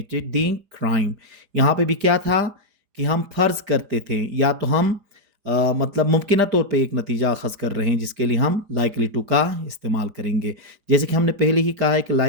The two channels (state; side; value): late; left; 4.9 ms